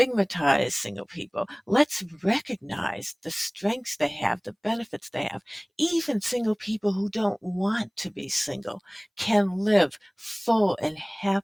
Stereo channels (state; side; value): identical; both; correlation 1.00